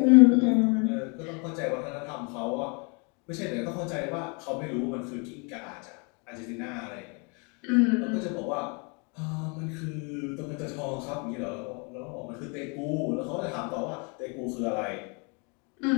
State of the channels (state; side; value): quieter; right; 33.5 dB